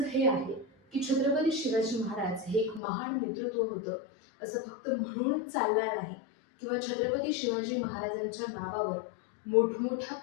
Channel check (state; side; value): drops out; right; at 2.8 s